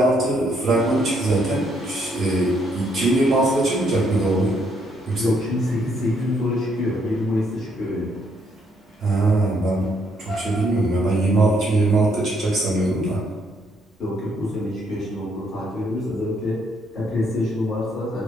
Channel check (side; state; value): both; normal; correlation 0.71